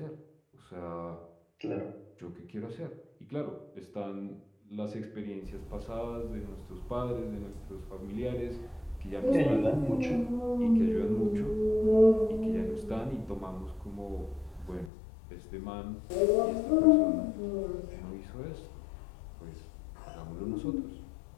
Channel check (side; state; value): right; drops out; at 14.9 s